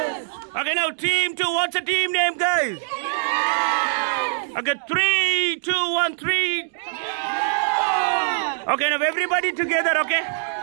Okay, now team 2. What's the team name, guys? Okay, 3, 2, 1, 3. Okay, now everybody together, okay?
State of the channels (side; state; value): left; silent; digital silence